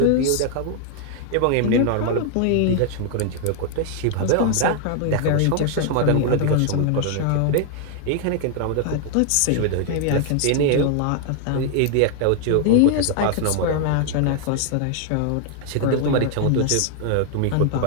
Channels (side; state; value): both; different; correlation 0.00